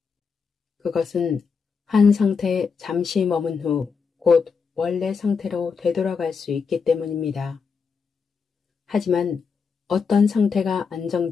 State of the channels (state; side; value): quieter; right; 5.6 dB